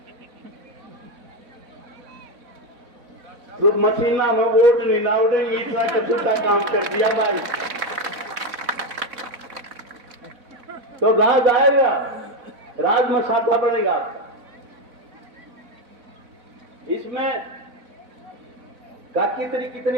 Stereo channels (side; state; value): left; late; 4.1 ms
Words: तो मशीना में वोट नहीं ना उड़ेंगे, इतना कसूता काम कर दिया भाई। तो राज आएगा, राज में साथा बढ़ेगा आपका। इसमें का कितनी